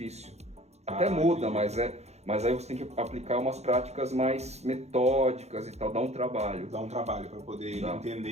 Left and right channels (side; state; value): left; late; 0.31 ms